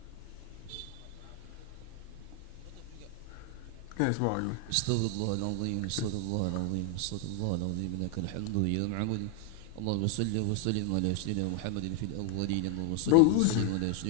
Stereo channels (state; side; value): different; both; correlation 0.00